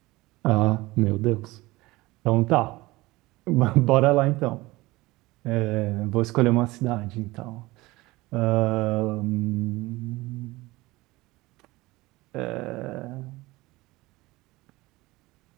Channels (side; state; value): left; quieter; 20.4 dB